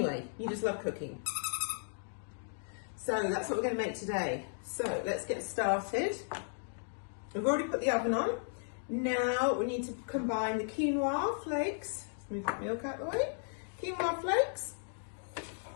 you just love cooking. So that's what we're going to make today. So let's get started. We've already put the oven on. Now we need to combine the quinoa flakes. Let's move the milk out of the way. Quinoa flakes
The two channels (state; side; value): silent; right; digital silence